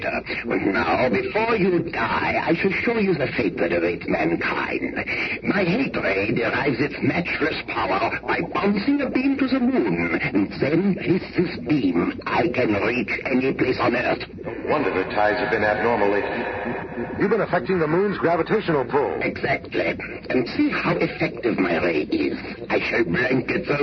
And now, before you die, I shall show you the fate that awaits mankind. My hate ray derives its matchless power by bouncing a beam to the moon. And then, with this beam, I can reach any place on Earth. No wonder the tides have been abnormal lately. You've been affecting the moon's gravitational pull. Exactly. And see how effective my ray is. I shall blanket the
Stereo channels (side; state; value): both; identical; correlation 1.00